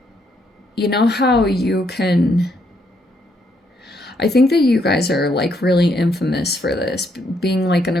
you know how you can, I think that you guys are like really infamous for this, being like an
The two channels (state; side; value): normal; both; correlation 0.74